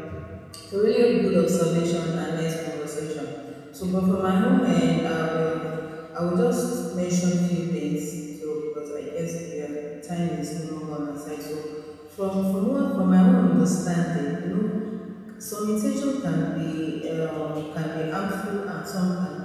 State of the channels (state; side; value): identical; both; correlation 1.00